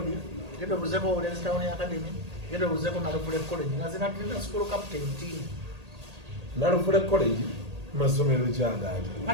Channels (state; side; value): late; left; 1.8 ms